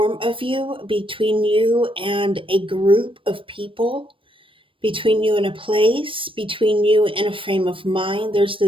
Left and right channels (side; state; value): left; late; 0.25 ms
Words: of you, between you and a group of people, between you and a place, between you and a frame of mind. There's